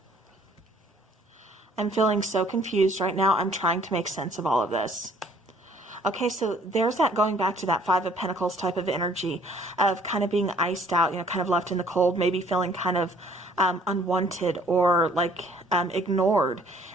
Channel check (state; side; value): normal; both; correlation 0.58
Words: I'm feeling so confused right now. I'm trying to make sense of all of this. Okay, so there's that going back to that Five of Pentacles type of energy of kind of being iced out, you know, kind of left in the cold, maybe feeling kind of unwanted or like ignored